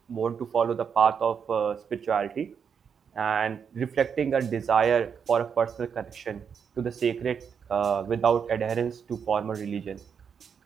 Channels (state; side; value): quieter; left; 6.9 dB